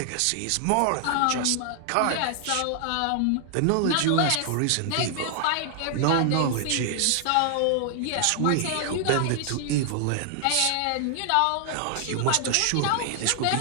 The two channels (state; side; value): different; both; correlation 0.00